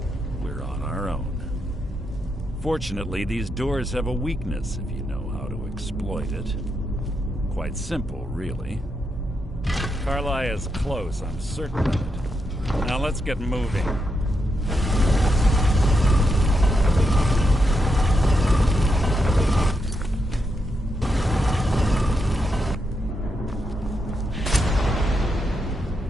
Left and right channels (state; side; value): normal; both; correlation 0.83